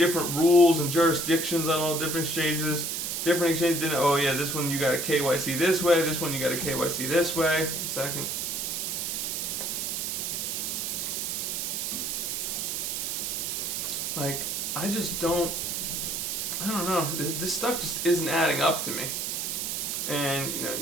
rules and jurisdictions on all different exchanges. Different exchanges didn't, oh yeah, this one you got to KYC this way, this one you got to KYC this way. A second. I don't know. This stuff just isn't adding up to me. And,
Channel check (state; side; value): noise; right; hiss, 2 dB below the sound